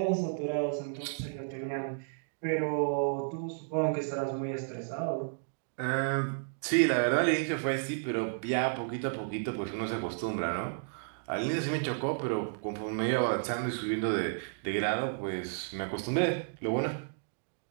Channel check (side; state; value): left; silent; digital silence